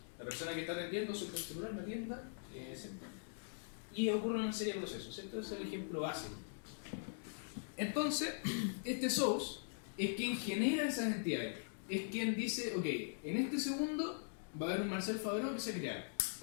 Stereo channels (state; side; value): silent; right; digital silence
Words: persona que está atendiendo su celular me atienda, ¿cierto? Y ocurre una serie de procesos, ¿cierto? Ese es el ejemplo básico. Entonces, este source es quien genera esas entidades. Es quien dice, ok, en este segundo va a haber un Marcel Fabreau que se crea.